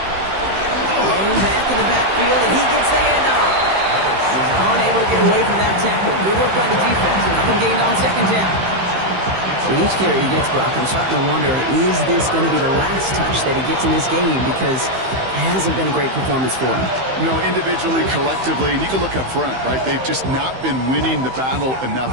Thrown back in the backfield, and he gets the handoff. He's unable to get away from that tackle. Good work by the defense. Nothing gained on 2nd down. With each carry he gets, Brock, I'm starting to wonder, is this going to be the last touch that he gets in this game? Because it hasn't been a great performance for him. You know, individually, collectively, and you can look up front, right? They've just not been winning the battle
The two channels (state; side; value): late; left; 15 ms